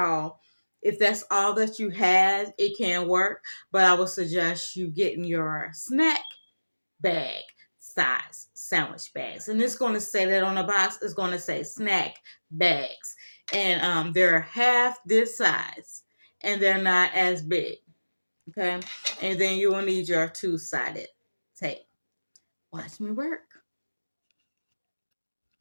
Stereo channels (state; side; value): inverted; both; correlation -1.00